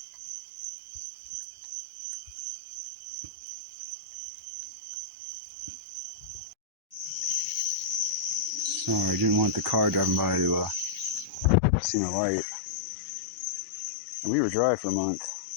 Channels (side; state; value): right; drops out; at 11.6 s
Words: Sorry, I didn't want the car driving by to see my light. And we were dry for a month.